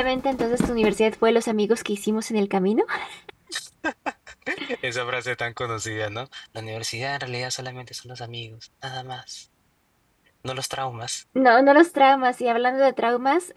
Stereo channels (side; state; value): both; identical; correlation 1.00